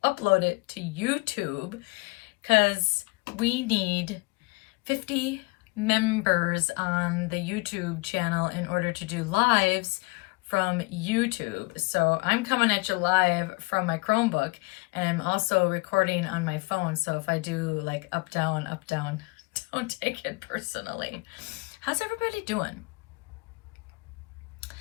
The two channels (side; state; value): right; quieter; 27.4 dB